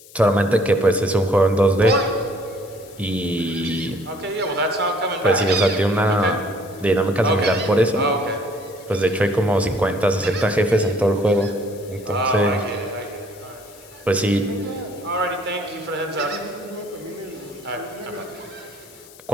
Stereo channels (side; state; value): left; noise; hiss, 22 dB below the sound